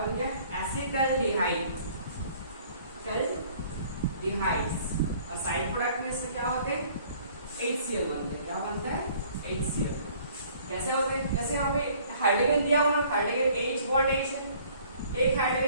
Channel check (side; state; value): both; inverted; correlation -0.56